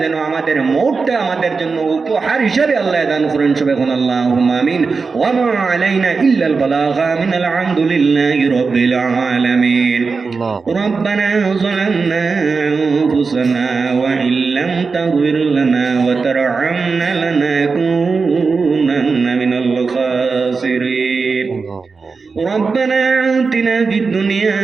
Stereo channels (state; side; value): quieter; left; 4.7 dB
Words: যেন আমাদের মওতটা আমাদের জন্য উপহার হিসেবে আল্লাহ দান করেন। সুবহান আল্লাহুম্মা আমিন। ওয়া মা আলাইনা ইল্লাল বালাগা মিনাল হামদুলিল্লাহি রাব্বিল আলামিন। রব্বানা যালামনা আনফুসানা ওয়া ইল্লাম তাগফির লানা ওয়া তারহামনা লানাকুনান্না মিনাল খাসিরিন। ربنا آتنا في الدنيا